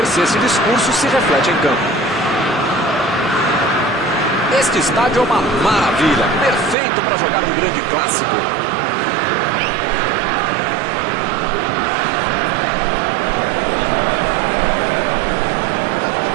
se esse discurso se reflete em campo. Este estádio é uma maravilha, perfeito para jogar um grande clássico.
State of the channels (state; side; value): drops out; left; at 6.8 s